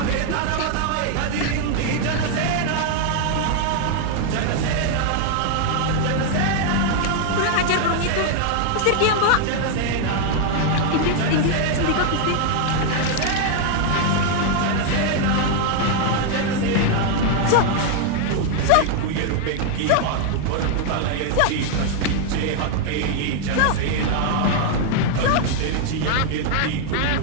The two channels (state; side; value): different; both; correlation 0.00